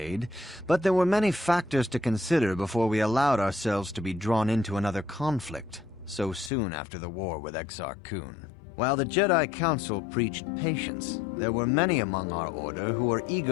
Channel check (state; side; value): drops out; right; at 6.5 s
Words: but there were many factors to consider before we allowed ourselves to be drawn into another conflict, so soon after the war with Exar Kun. While the Jedi Council preached patience, there were many among our order who were